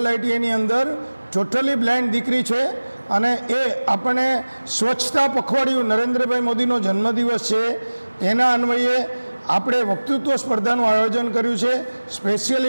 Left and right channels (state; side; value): inverted; both; correlation -1.00